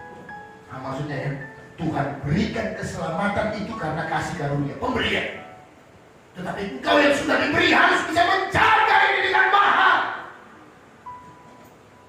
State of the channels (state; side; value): identical; both; correlation 1.00